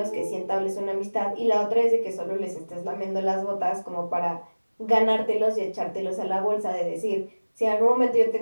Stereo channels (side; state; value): both; inverted; correlation -1.00